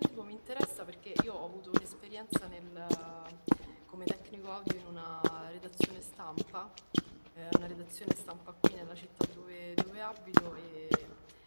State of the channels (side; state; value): both; inverted; correlation -1.00